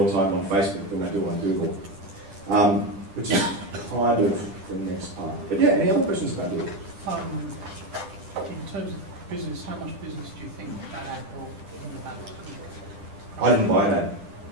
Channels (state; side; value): late; left; 10 ms